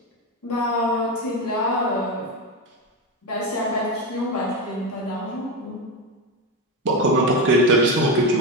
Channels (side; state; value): both; normal; correlation 0.15